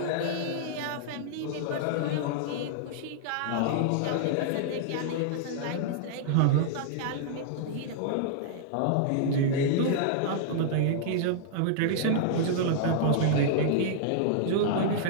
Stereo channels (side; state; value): both; different; correlation -0.01